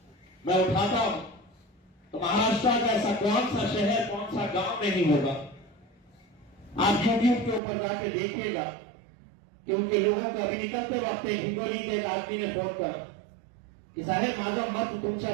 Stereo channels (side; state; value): left; drops out; at 7.6 s